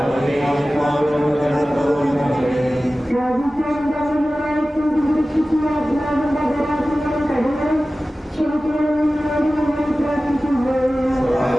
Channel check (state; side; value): normal; both; correlation 0.96